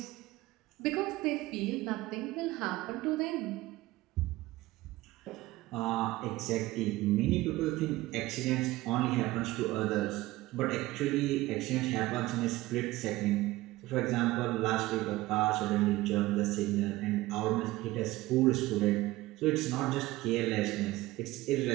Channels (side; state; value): left; quieter; 18.3 dB